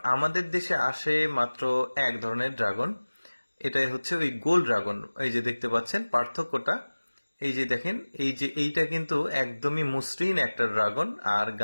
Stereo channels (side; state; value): both; inverted; correlation -1.00